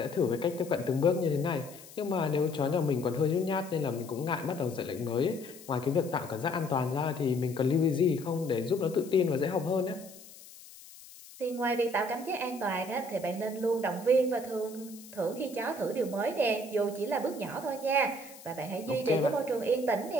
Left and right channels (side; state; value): left; noise; hiss, 19 dB below the sound